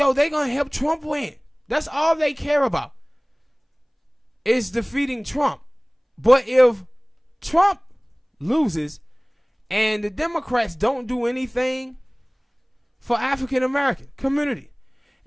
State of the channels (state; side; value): identical; both; correlation 1.00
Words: they gonna help Trump win. That's all they care about. Is defeating Trump. But if Trump loses and the Democrats don't do anything for African American community,